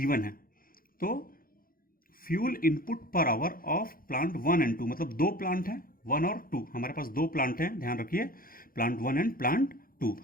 है। तो फ्यूल इनपुट पर आवर ऑफ प्लांट 1 and 2, मतलब दो प्लांट हैं 1 और 2, हमारे पास दो प्लांट हैं, ध्यान रखिए, प्लांट 1 and प्लांट 2,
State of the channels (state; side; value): late; right; 0.42 ms